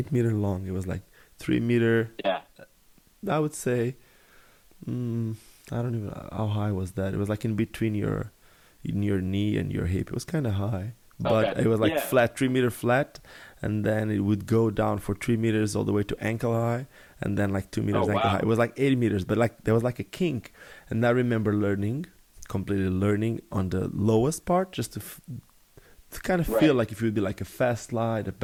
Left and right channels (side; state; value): both; identical; correlation 1.00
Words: meter long. It was like 3 meter. Yeah. I would say, I don't even know how high was that. It was like in between your knee and your hip. It was kind of high. But it was like flat, 3 meter flat, and then it would go down for 3 meters all the way to ankle high, and then like 2 meters ankle high. It was like 80 meters, but like there was like a kink. And I remember completely learning on the lowest part, just to kind of feel like if it would be like a fast slide, a